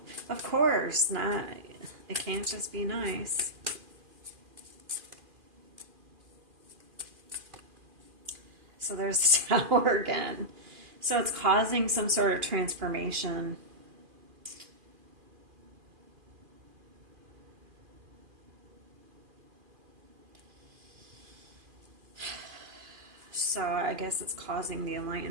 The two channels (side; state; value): left; late; 2.4 ms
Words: Of course, not. It can't just be nice. So there's the Tower again. So it's causing some sort of transformation. So I guess it's causing the